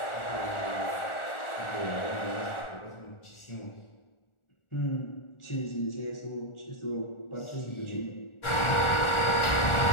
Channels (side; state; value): right; late; 1.4 ms